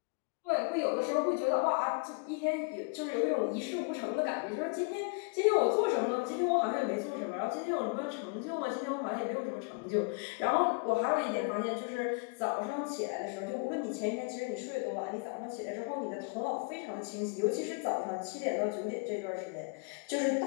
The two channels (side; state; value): right; quieter; 35.2 dB